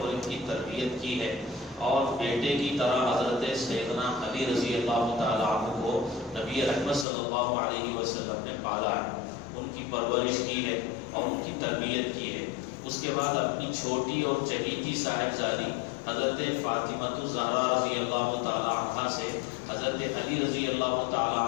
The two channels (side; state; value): right; drops out; at 7.1 s